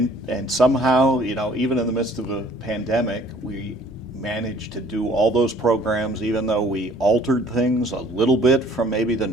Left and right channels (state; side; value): normal; both; correlation 0.56